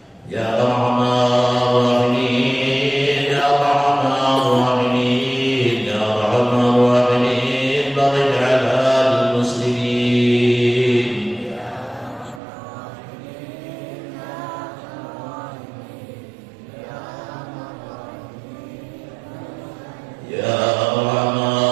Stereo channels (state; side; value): drops out; left; at 12.4 s